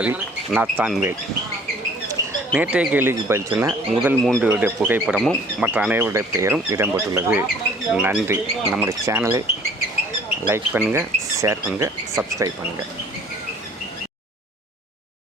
நாத்தான்வேல். நேற்றைய கேள்விக்கு பதில் சொன்ன முதல் 3 புகைப்படமும் மற்ற அனைவருடைய பெயரும் இடம்பெற்றுள்ளது. நன்றி. நம்முடைய சேனலை லைக் பண்ணுங்கள், ஷேர் பண்ணுங்கள், சப்ஸ்கிரைப் பண்ணுங்கள்.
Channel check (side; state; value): both; normal; correlation 0.54